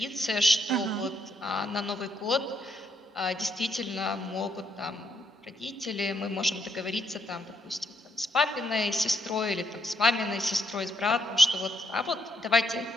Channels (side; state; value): both; normal; correlation 0.76